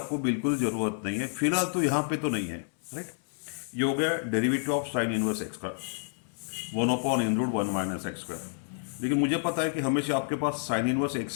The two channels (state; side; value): silent; right; digital silence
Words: बिल्कुल जरूरत नहीं है फिलहाल, तो यहां पे तो नहीं है. राइट. ये हो गया derivative of sine inverse x का 1/(1 - x²). लेकिन मुझे पता है कि हमेशा आपके पास साइन इनवर्स